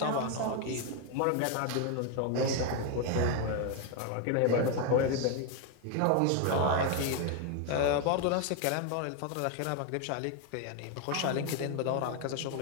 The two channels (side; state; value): both; different; correlation 0.01